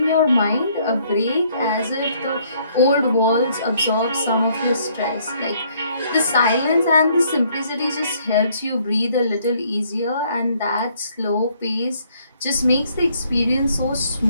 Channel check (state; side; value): inverted; both; correlation -0.66